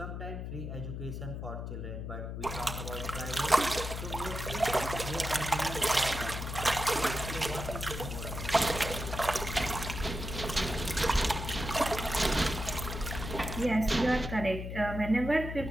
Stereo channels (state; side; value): noise; left; hum, 6 dB below the sound